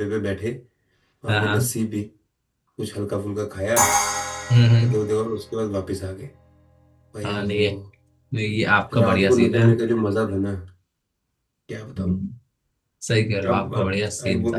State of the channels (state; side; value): identical; both; correlation 1.00